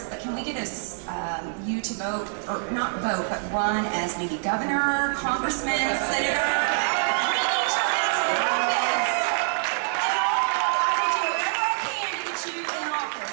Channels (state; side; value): silent; left; digital silence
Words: but can we get you to vote, or not vote, but run as maybe governor, congressman, senator?